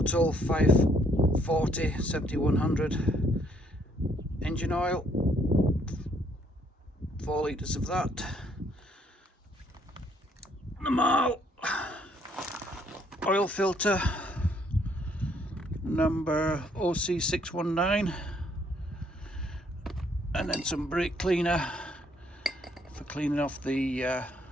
540 7100 engine oil, 4 litres of that. The Marl oil filter number OC619, and then some brake cleaner for cleaning off the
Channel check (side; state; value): both; normal; correlation 0.67